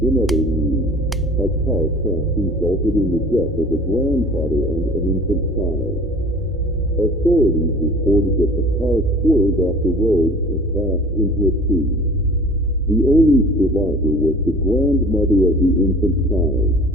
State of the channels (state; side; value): normal; both; correlation 0.45